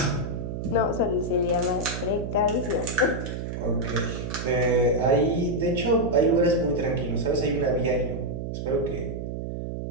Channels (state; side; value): noise; right; hum, 5 dB below the sound